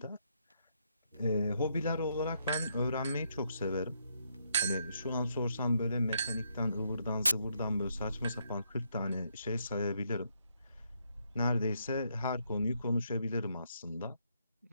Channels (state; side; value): inverted; both; correlation -0.76